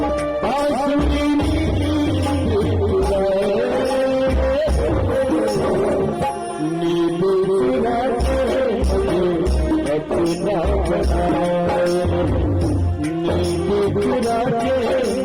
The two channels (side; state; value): both; identical; correlation 1.00